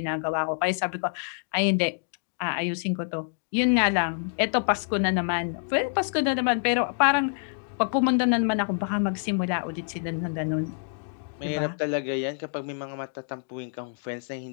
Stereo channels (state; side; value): silent; right; digital silence